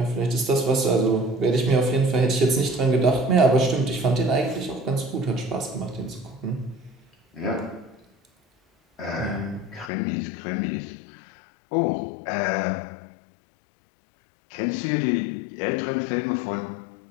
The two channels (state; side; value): drops out; right; at 9.9 s